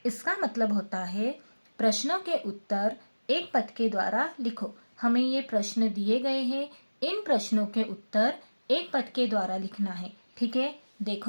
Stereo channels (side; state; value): both; inverted; correlation -1.00